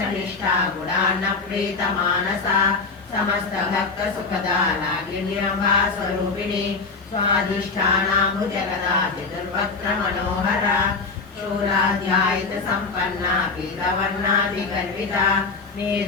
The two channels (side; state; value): right; quieter; 4.3 dB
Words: गुणान्नप्रीतमानसा समस्तभक्तसुखदा रागिण्यम्बा स्वरूपिणी स्वाधिष्ठानाम्बुजगदा चतुर्वक्त्रमनोहरा शूलाध्यायितसम्पन्ना पीतवर्णादिगर्विता